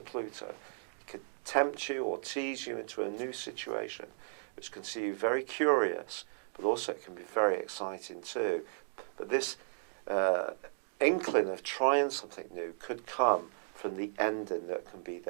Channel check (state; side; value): silent; left; digital silence